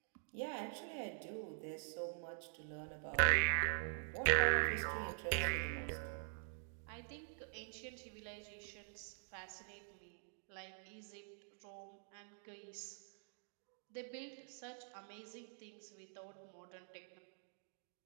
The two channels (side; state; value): left; silent; digital silence